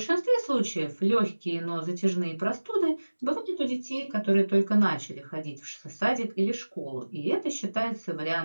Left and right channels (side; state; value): both; inverted; correlation -1.00